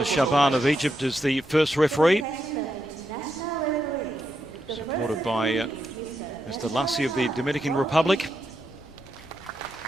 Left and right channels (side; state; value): left; noise; rumble, 22 dB below the sound